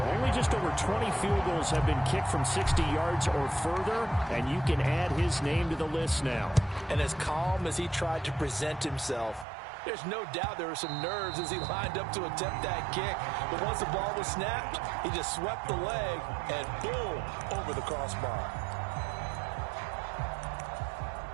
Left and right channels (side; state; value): left; drops out; at 9.5 s